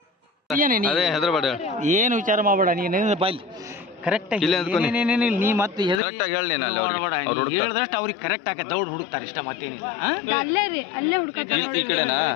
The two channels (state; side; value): drops out; right; at 6.0 s